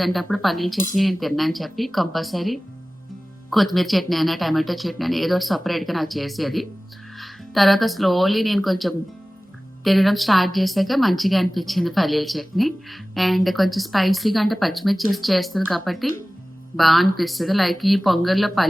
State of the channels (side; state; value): both; normal; correlation 0.97